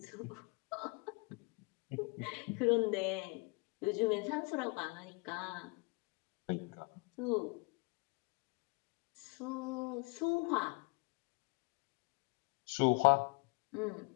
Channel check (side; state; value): right; quieter; 30.8 dB